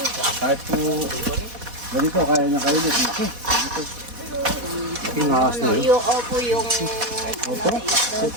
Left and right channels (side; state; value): left; late; 4.1 ms